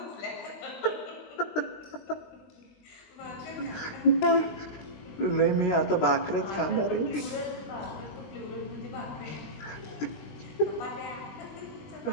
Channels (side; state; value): right; late; 20 ms